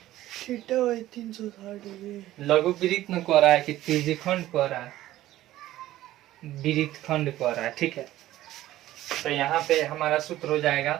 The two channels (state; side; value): quieter; left; 14.8 dB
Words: लघु वृत्त में कह रहा है कि त्रिज्यखंड कह रहा है, वृत्त खंड कह रहा है, ठीक है। तो यहाँ पे हमारा सूत्र हो